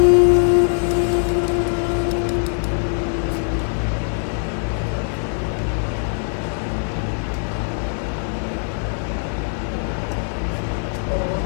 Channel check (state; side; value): silent; right; 65 dB below the other